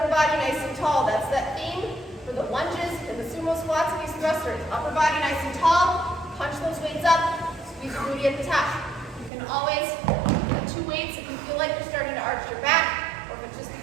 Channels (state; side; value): drops out; left; at 9.3 s